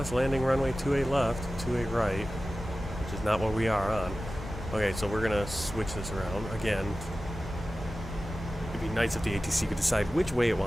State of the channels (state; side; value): normal; both; correlation 0.95